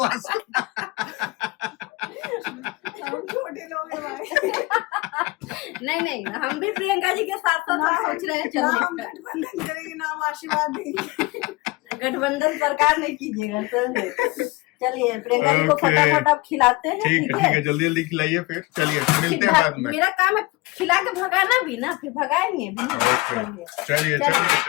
हम छोटे लोग हैं भाई। नहीं हम भी प्रियंका जी के साथ सोच रहे हैं ना हम चलने। गठबंधन करेंगे, ना हम आशीर्वाद देंगे। गठबंधन सरकार नहीं कीजिएगा सर। चलिए प्रियंका जी को Okay. फटाफट आप खिलाते हैं, ठीक है, जल्दी खिलाइए, फिर चलिए मिलते हैं बाद में। मेरा काम है खिला के भगाना भी ना, फिर भगाएंगे भी ना। ओके,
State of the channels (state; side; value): quieter; right; 22.5 dB